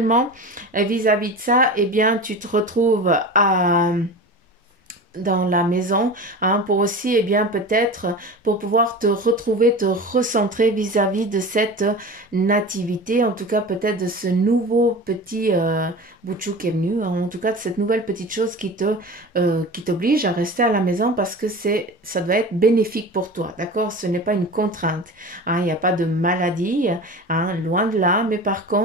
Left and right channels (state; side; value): normal; both; correlation 0.32